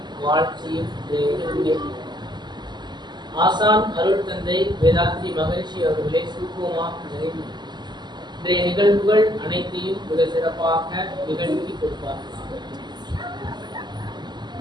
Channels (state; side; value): late; left; 0.21 ms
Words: வாழ்த்தியும் ஆசான் அருள் தந்தை வேதாத்ரி மகிழ்ச்சி அவர்களை சுருக்கமாக நிறைவு இன்றைய நிகழ்வுகள் அனைத்தையும் மிக சிறப்பாக நிகழ்த்தி கொடுப்பார்கள்.